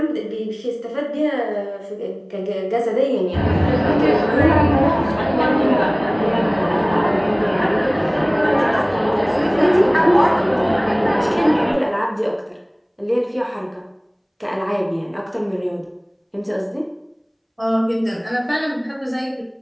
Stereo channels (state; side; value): identical; both; correlation 1.00